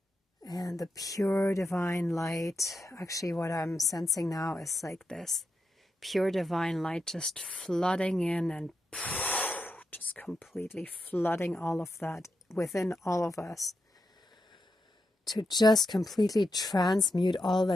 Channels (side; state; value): both; normal; correlation 0.86